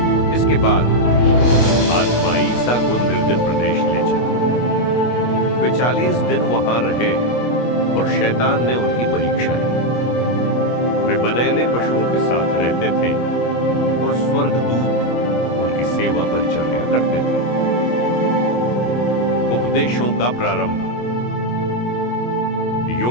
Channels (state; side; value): late; right; 25 ms